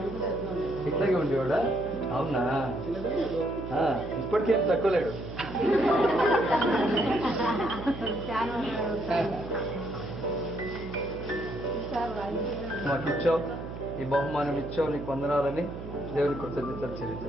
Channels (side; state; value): right; noise; hum, 10 dB below the sound